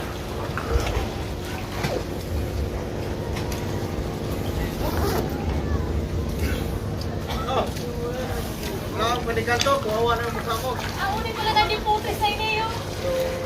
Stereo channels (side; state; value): both; identical; correlation 1.00